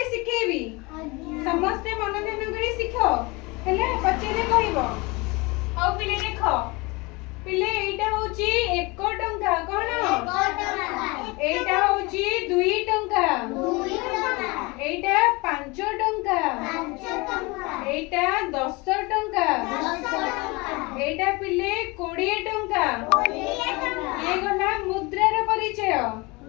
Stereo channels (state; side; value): quieter; right; 25.5 dB